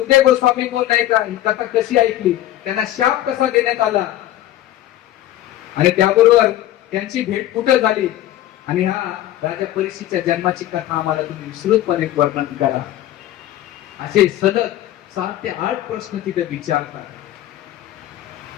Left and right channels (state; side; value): quieter; right; 13.6 dB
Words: गोस्वामी कोण नाही का, ही कथा कशी ऐकली, त्यांना शाप कसा देण्यात आला आणि त्याबरोबर त्यांची भेट कुठं झाली आणि हा राजा परीक्षितच्या जन्माची कथा आम्हाला तुम्ही विस्तृतपणे वर्णन करा. असे सलग 7 ते 8 प्रश्न तिथे विचारतात.